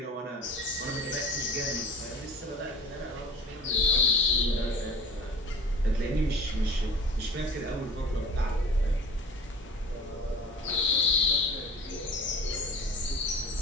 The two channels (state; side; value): normal; both; correlation 0.39